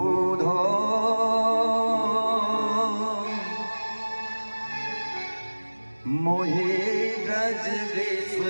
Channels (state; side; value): inverted; both; correlation -1.00